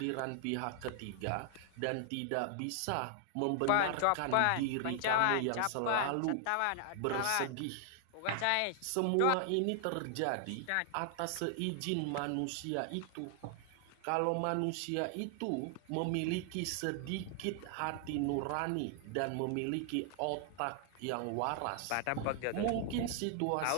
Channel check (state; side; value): different; both; correlation 0.00